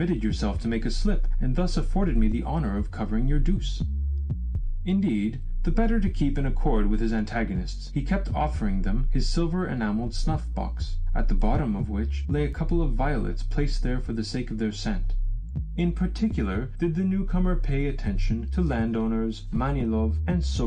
yourself to make a slip, and thus afforded me the honor of covering your deuce." Indeed, the better to keep in accord with his antagonists, he kept offering them his silver enamelled snuff-box, at the bottom of which lay a couple of violets placed there for the sake of their scent. In particular did the newcomer pay attention to landowners Manilov and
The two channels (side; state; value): both; identical; correlation 1.00